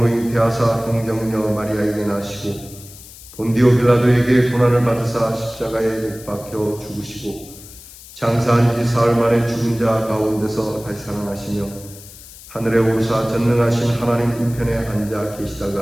잉태하사 동정녀 마리아에게 나시고 본디오 빌라도에게 고난을 받으사 십자가에 못 박혀 죽으시고 장사한 지 사흘 만에 죽은 자 가운데서 다시 살아나시며 하늘에 오르사 전능하신 하나님 우편에 앉아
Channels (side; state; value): left; noise; hiss, 18 dB below the sound